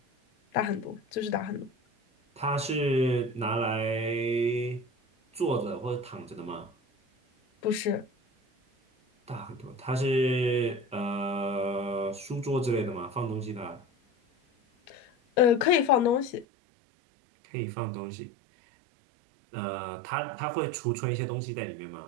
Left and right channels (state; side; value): drops out; left; at 16.4 s